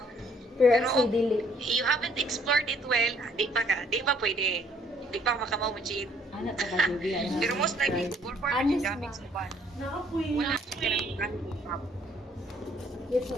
Pero you haven't explored it well, di pa pwede. Di pa makamaw mo cheat. Pero most likely, Google Form yung gamit sa ban. Wala Yes, sir.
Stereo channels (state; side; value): normal; both; correlation 0.63